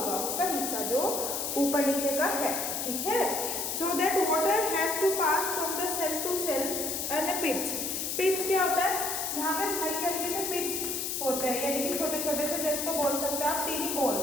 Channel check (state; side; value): noise; left; hiss, 2 dB below the sound